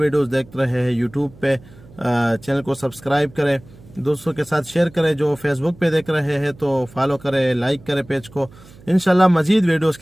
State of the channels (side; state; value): right; noise; hum, 23 dB below the sound